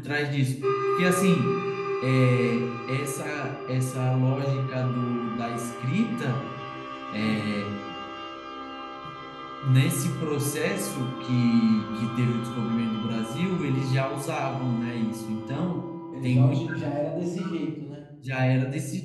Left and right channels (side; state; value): both; identical; correlation 1.00